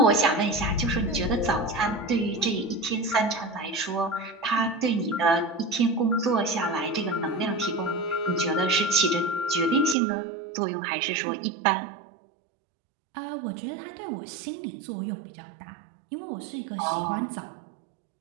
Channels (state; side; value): drops out; left; at 10.0 s